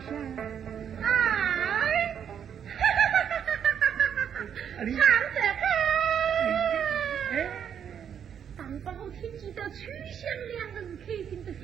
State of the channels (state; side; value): quieter; left; 8.4 dB